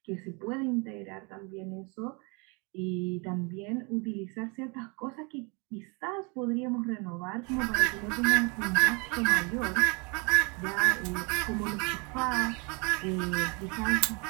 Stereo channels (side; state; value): left; quieter; 31.4 dB